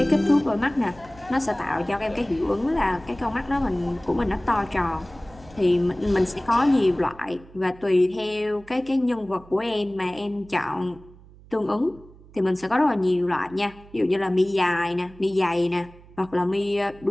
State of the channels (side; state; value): right; noise; hum, 23 dB below the sound